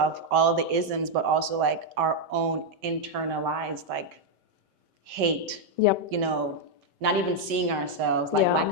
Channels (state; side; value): late; left; 5.2 ms